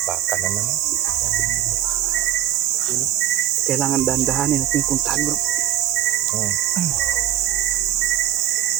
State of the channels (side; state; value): left; quieter; 12.5 dB